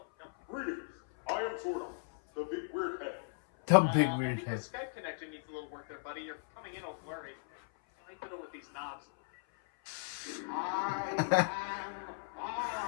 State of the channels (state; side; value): silent; right; 54 dB below the other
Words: no. Greetings. I am Zordon, the big weird head. The big I weird think head. the Skype connection needs a little work there, buddy. You're coming in all blurry. I fiddle with these knobs.